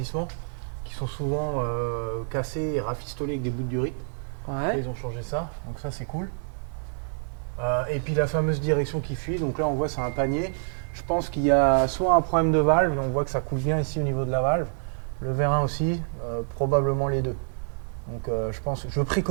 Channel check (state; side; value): silent; left; digital silence